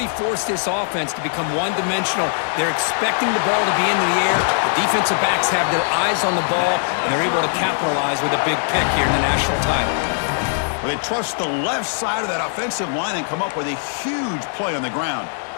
forced this offense to become one-dimensional. They're expecting the ball to be in the air. The defensive backs have their eyes on the ball, and they're able to capitalize with a big pick here in the national title. Well, they trust the left side of that offensive line and come up with a huge play on the ground.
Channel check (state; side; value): silent; right; digital silence